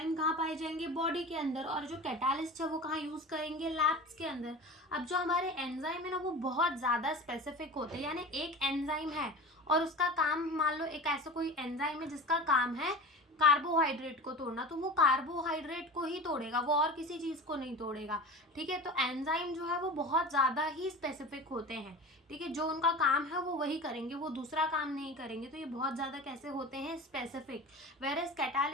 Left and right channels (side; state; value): both; normal; correlation 0.33